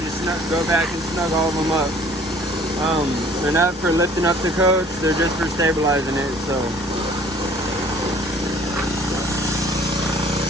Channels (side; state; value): both; normal; correlation 0.54